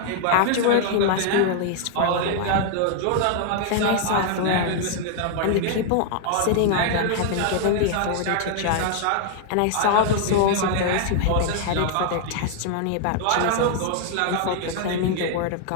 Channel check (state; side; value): different; both; correlation 0.00